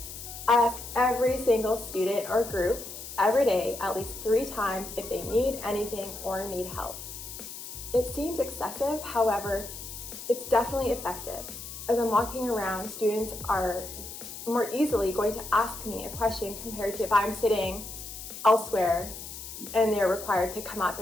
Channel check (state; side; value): noise; left; hiss, 11 dB below the sound